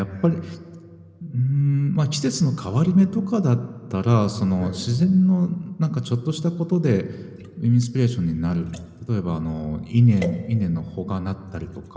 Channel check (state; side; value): identical; both; correlation 1.00